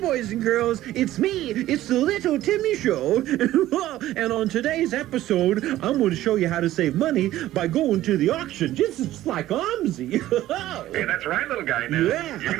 and girls. It's me. It's the Little Timmy Show. And on today's episode, I'm going to show you how to save money by going to the auction, just like OMSI. Hey, that's right, little guy. Now, Yeah. you're going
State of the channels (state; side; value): quieter; left; 14.6 dB